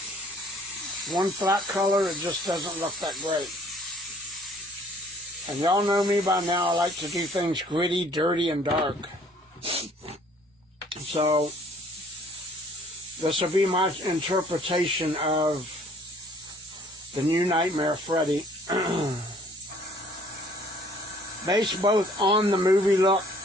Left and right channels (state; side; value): normal; both; correlation 0.58